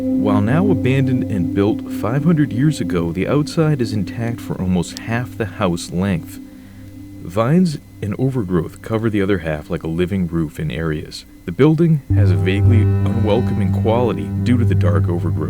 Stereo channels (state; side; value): identical; both; correlation 1.00